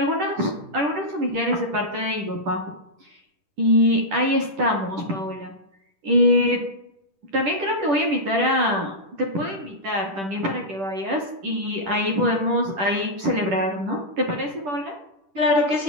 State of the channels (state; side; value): late; left; 10 ms